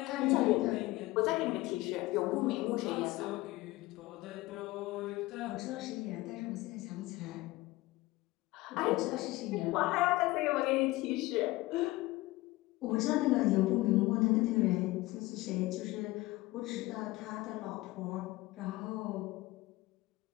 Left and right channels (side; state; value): right; quieter; 19.6 dB